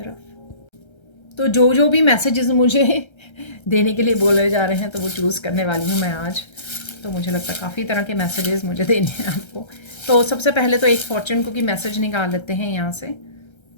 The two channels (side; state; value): right; late; 1.3 ms